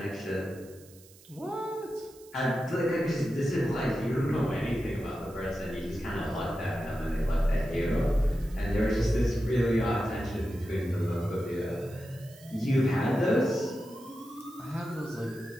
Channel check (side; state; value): right; noise; hiss, 24 dB below the sound